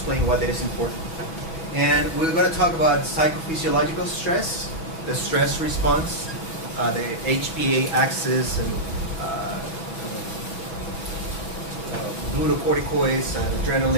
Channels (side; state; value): right; late; 6.1 ms